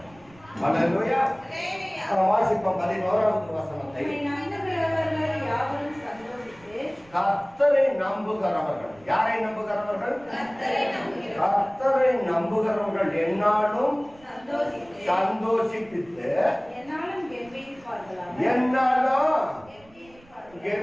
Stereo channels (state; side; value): noise; right; rumble, 27 dB below the sound